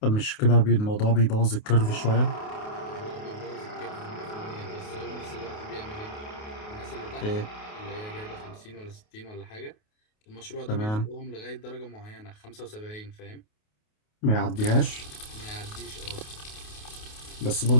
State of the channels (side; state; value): right; late; 28 ms